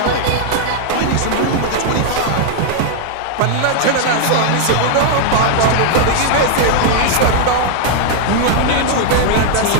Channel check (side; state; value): both; different; correlation 0.00